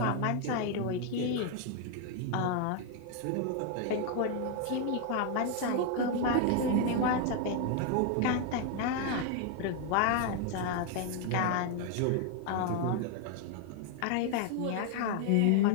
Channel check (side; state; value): both; different; correlation 0.00